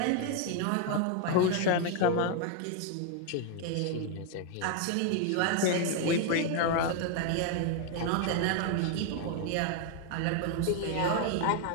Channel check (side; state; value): both; different; correlation 0.01